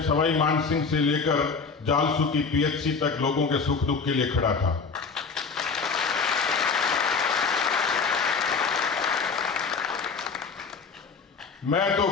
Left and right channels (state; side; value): quieter; right; 5.0 dB